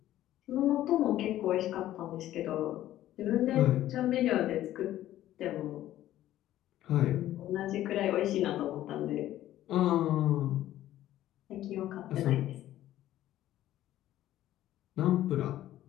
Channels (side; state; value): right; quieter; 13.5 dB